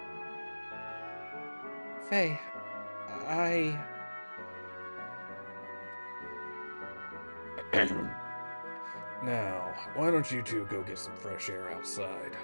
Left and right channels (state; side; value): inverted; both; correlation -1.00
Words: Faye, Now, why don't you two go get some fresh air outside?